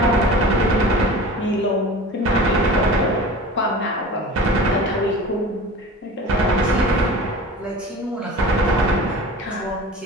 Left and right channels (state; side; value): normal; both; correlation 0.38